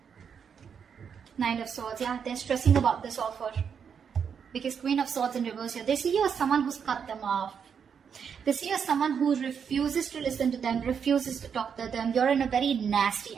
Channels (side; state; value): left; quieter; 7.1 dB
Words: Nine of Swords, yeah, they're stressing about this offer. Because Queen of Swords in reverse here, they see you as someone who's cut them off. They see you as someone who refuses to listen to them, refuses to talk to them. You're in a very nasty